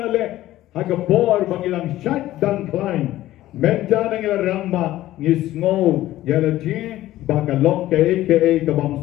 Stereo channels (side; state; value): right; quieter; 15.0 dB